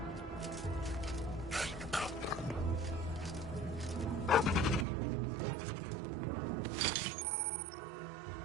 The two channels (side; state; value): left; drops out; at 4.9 s